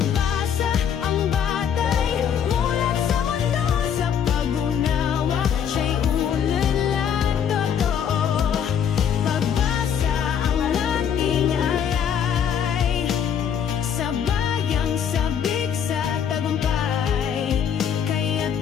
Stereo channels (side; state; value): right; quieter; 8.3 dB